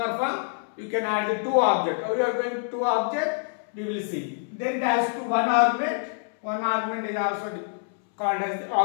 you can add the two objects. How you are going to two objects, we will see. Then it has to one argument is also called as the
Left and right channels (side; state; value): right; silent; 61 dB below the other